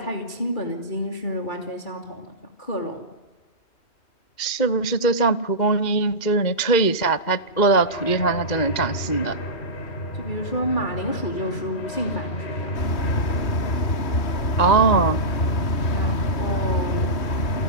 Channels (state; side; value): late; right; 2.1 ms